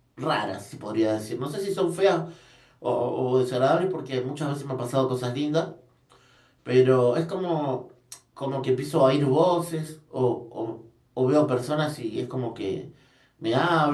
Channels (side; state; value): both; identical; correlation 1.00